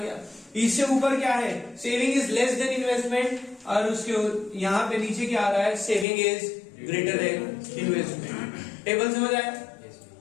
इससे ऊपर क्या है, saving is less than investment, और उसके यहाँ पे नीचे क्या आ रहा है, saving is greater than investment. Table समझ आया।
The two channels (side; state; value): right; drops out; at 6.1 s